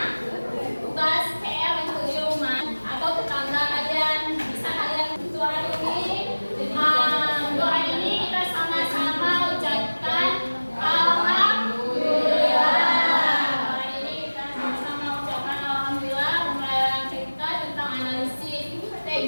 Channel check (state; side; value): inverted; both; correlation -1.00